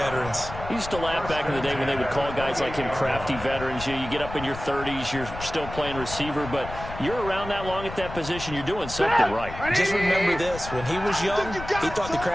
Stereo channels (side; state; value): left; noise; rumble, 11 dB below the sound